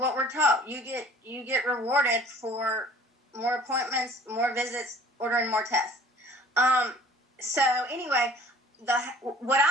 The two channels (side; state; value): both; normal; correlation 0.50